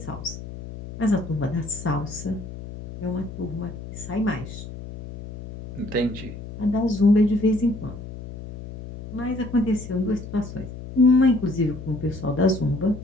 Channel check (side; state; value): left; noise; hum, 11 dB below the sound